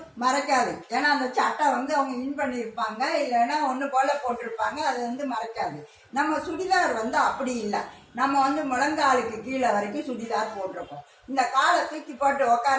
மறைக்காது. ஏன்னா அந்த சட்டை அவங்க இன் பண்ணியிருப்பாங்க, இல்லைன்னா ஒன்று போல போட்டிருப்பாங்க, அது மறைக்காது. நம்ம சுடிதார் அப்படி இல்லை. நம்ம முழங்காலுக்கு கீழே வரைக்கும் சுடிதார் போட்டிருக்கோம். இந்த காலை தூக்கி போட்டு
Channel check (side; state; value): both; identical; correlation 1.00